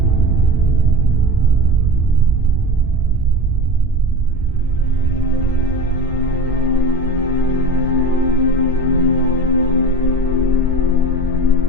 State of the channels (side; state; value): both; normal; correlation 0.32